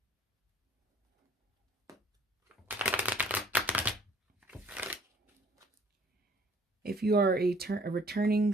If you are a returning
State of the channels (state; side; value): normal; both; correlation 0.57